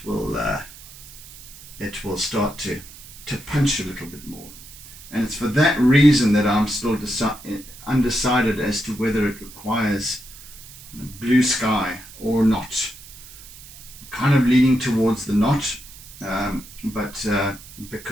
it will start to punch a little bit more. And it's for that reason that I'm still undecided as to whether it requires blue sky or not. I'm kind of leaning towards the not, but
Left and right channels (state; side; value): noise; right; hiss, 18 dB below the sound